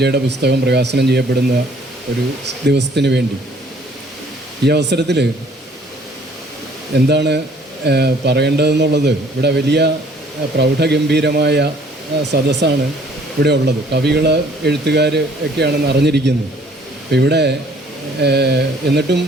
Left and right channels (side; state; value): both; normal; correlation 0.58